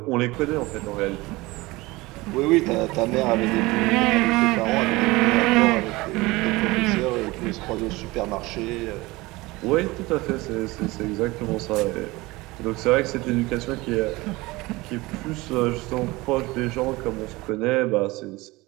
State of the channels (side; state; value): left; quieter; 21.5 dB